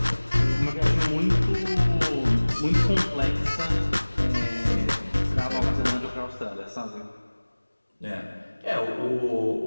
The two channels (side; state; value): both; inverted; correlation -1.00